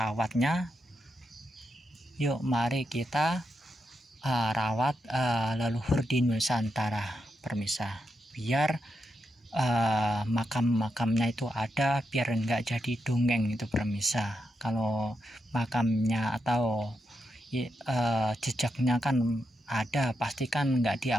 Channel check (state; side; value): normal; both; correlation 0.85